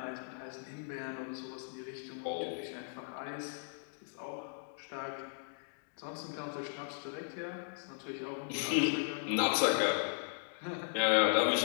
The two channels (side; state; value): right; silent; digital silence